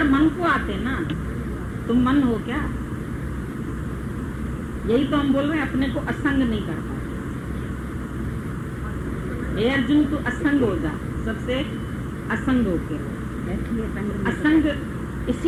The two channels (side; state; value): both; identical; correlation 1.00